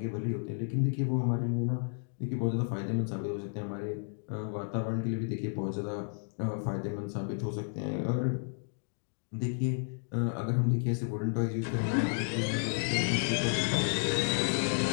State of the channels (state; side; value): silent; right; 56 dB below the other